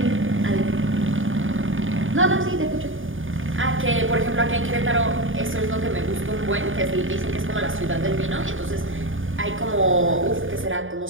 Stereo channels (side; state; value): left; late; 0.58 ms